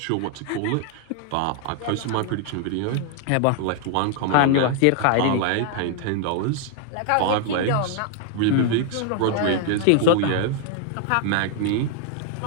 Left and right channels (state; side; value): different; both; correlation 0.00